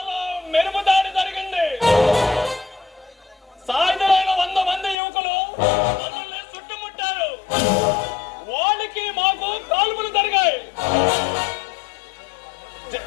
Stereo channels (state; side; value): drops out; right; at 5.0 s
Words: మెరుపు దాడి జరిగింది. సాయుధులైన 100 మంది యువకులు మనల్ని చుట్టుముట్టారు. వాళ్ళకి మాకు కాల్పులు జరిగాయి.